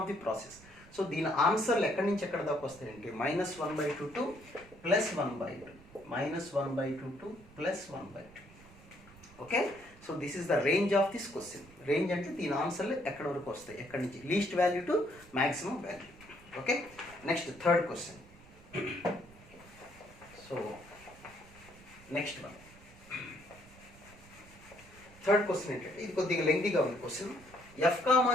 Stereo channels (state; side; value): noise; right; rumble, 22 dB below the sound